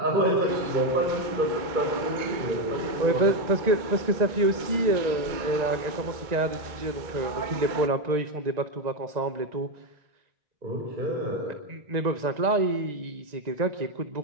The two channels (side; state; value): left; late; 2.2 ms